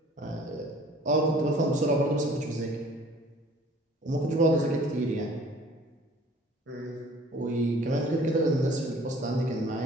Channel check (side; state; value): both; normal; correlation 0.52